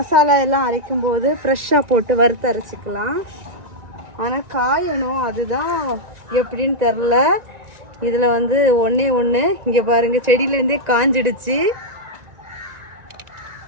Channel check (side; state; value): left; late; 1.9 ms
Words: எல்லாம் அரைக்கும் போது ஃப்ரெஷ்ஷாக போட்டு வறுத்து அரைச்சிக்கலாம். ஆனால் காயணும், அதுதான் எப்படின்னு தெரில. இதில் ஒன்றே ஒன்று இங்கே பாருங்கள், செடியிலேருந்தே காஞ்சிடுச்சு.